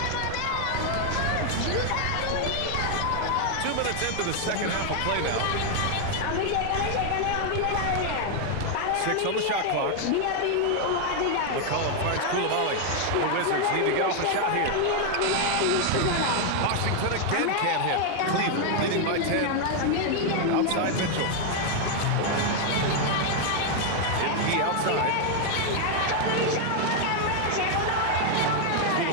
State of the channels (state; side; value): different; both; correlation 0.00